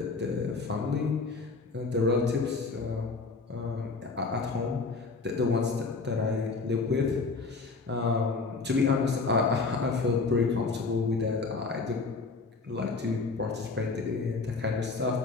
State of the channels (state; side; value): quieter; right; 4.1 dB